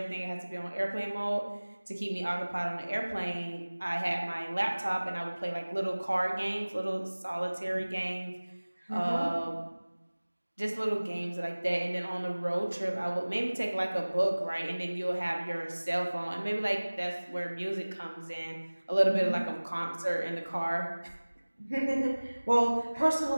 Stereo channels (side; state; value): both; inverted; correlation -1.00